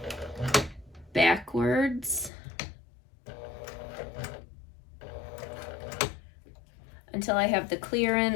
backwards until I have the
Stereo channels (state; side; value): drops out; right; at 2.3 s